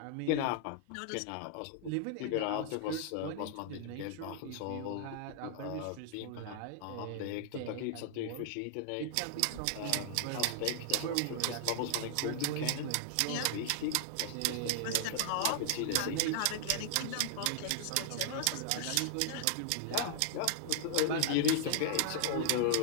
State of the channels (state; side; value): different; both; correlation -0.01